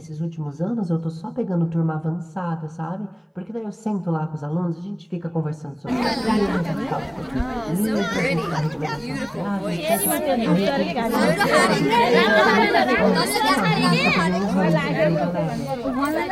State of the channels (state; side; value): identical; both; correlation 1.00